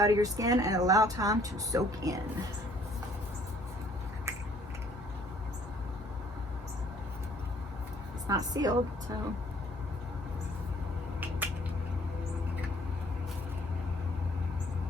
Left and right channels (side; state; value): both; normal; correlation 0.60